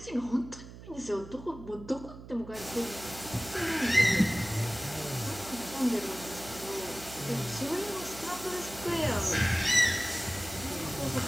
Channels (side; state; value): right; noise; hum, 15 dB below the sound